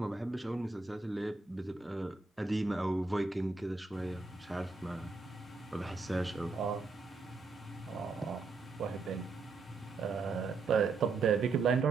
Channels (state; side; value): quieter; left; 4.1 dB